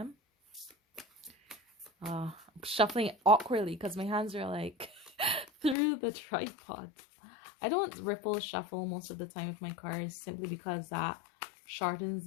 I'm shuffling it awkwardly because my hands are like through the tripod. I don't ripple shuffle most of the time with my cards simply because that shortens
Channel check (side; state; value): right; drops out; at 5.8 s